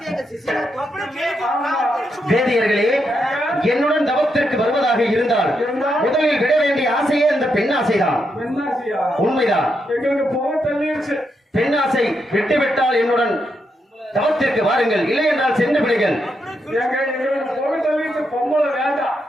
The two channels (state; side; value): normal; both; correlation 0.82